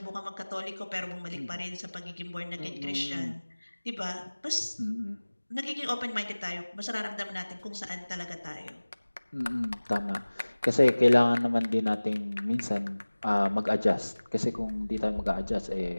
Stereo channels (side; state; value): both; inverted; correlation -1.00